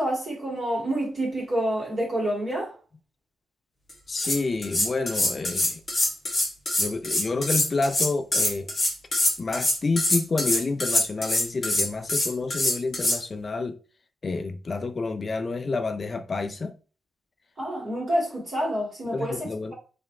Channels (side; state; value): both; normal; correlation 0.89